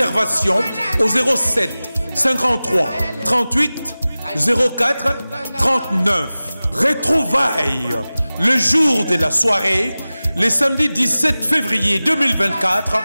au 07 53 38 04 39. Retrouvailles le jour de la soirée, le samedi 17 février 2024,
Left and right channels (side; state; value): both; inverted; correlation -0.97